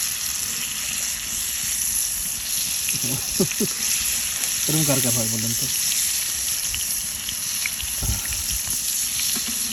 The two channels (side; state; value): both; identical; correlation 1.00